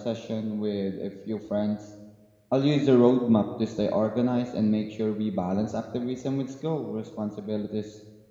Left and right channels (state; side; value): identical; both; correlation 1.00